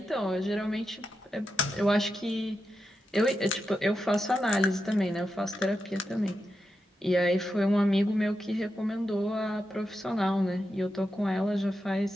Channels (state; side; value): normal; both; correlation 0.88